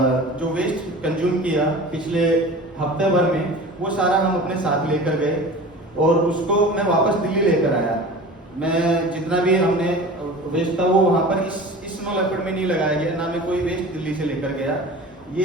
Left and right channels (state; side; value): normal; both; correlation 0.38